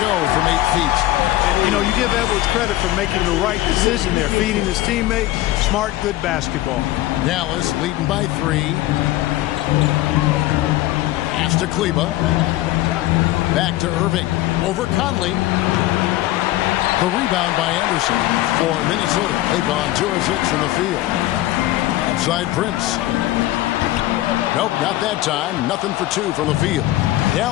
from 8 feet. And, you know, you give Edwards credit for making the right decision there. Feeding his teammate. Smart, good basketball. Dallas leading by 3. Pass to Kleba. Back to Irving. Over Conley. The rebound by Anderson for Minnesota. They've gone 2 of 6 from the field. Outside Prince. Nope, not that time. Nothing for 2 from the field.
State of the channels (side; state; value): right; quieter; 16.3 dB